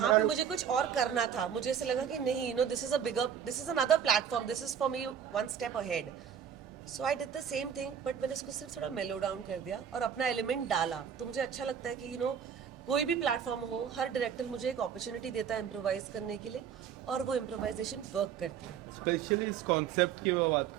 पे मुझे कुछ और करना था मुझे ऐसे लगा कि नहीं you know this is another platform this is for me one step ahead so I did the same thing but मैंने इसको सिर्फ थोड़ा मेलो डाउन कर दिया और अपना एलिमेंट डाला तो मुझे अच्छा लगता है कि यू नो कोई भी प्लेटफॉर्म हो हर डायरेक्टर मुझे एक अपॉर्चुनिटी देता है इम्प्रोवाइज करने के लिए और वो इम्प्रोवाइजेशन वर्क करती है स्पेशली इस कॉन्सेप्ट की मैं बात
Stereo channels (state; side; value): quieter; left; 8.1 dB